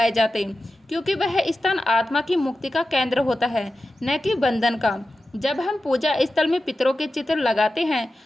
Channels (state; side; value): normal; both; correlation 0.93